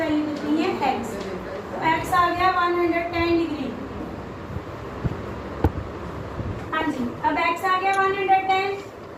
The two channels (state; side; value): identical; both; correlation 1.00